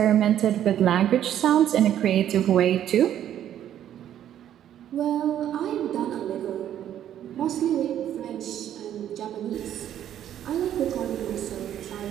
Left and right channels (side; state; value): left; quieter; 10.8 dB